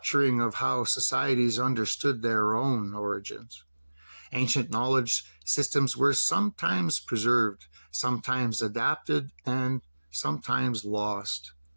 of how societies understood their own origins. Ancient knowledge systems were sometimes preserved, sometimes adapted, and sometimes lost.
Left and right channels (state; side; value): inverted; both; correlation -1.00